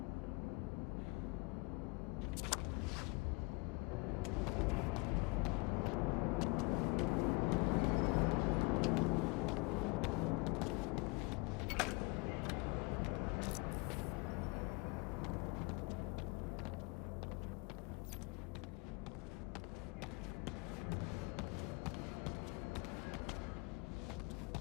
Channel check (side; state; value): right; quieter; 28.2 dB